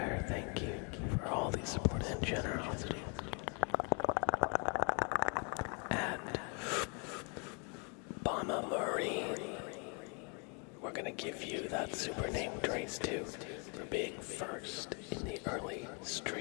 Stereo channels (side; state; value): right; quieter; 36.1 dB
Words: thank you for all the support and generosity. And Bama Marine, we're gonna give you that super name trace too for being first in the early